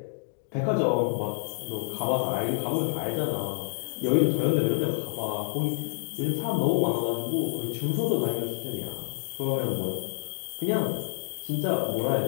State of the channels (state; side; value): silent; right; digital silence